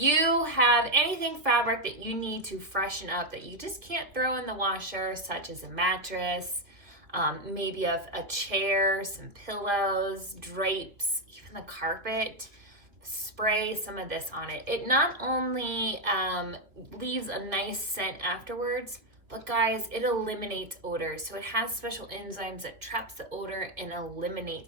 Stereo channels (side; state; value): left; late; 2.4 ms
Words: have anything fabric that you need to freshen up that you just can't throw in the washer, such as a mattress, maybe a chair, some pillows, drapes, even the carpet, spray some of this on it. It not only leaves a nice scent afterwards, but guys, it eliminates odors. So it has special enzymes that traps the odor and